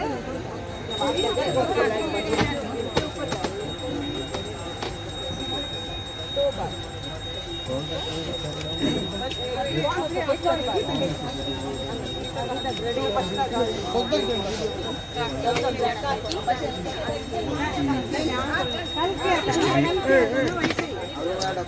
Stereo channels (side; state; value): both; identical; correlation 1.00